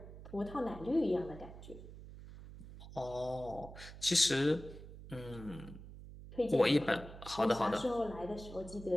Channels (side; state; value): right; noise; hum, 14 dB below the sound